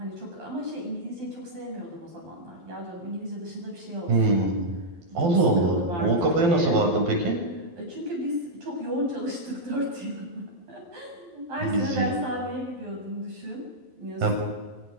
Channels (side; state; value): left; late; 12 ms